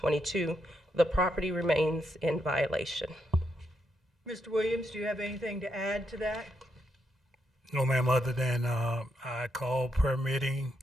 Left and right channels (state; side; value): normal; both; correlation 0.80